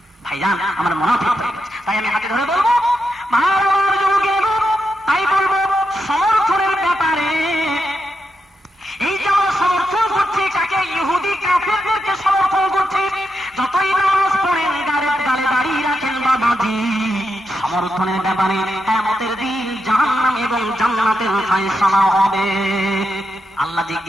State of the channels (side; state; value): both; normal; correlation 0.85